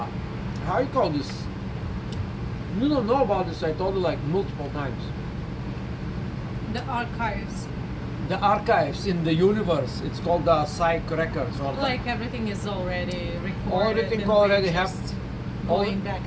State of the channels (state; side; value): identical; both; correlation 1.00